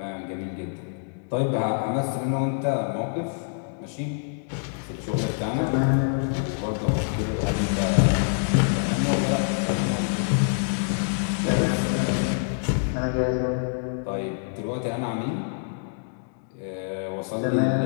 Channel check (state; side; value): silent; right; digital silence